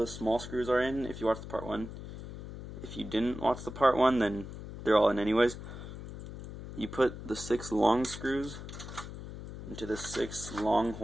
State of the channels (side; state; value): left; noise; hum, 11 dB below the sound